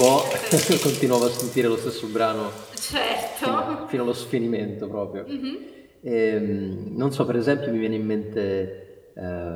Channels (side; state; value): both; identical; correlation 1.00